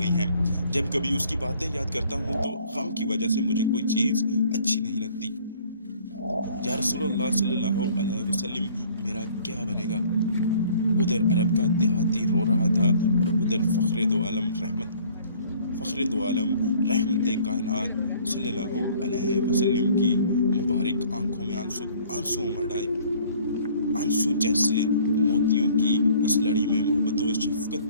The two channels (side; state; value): both; inverted; correlation -0.55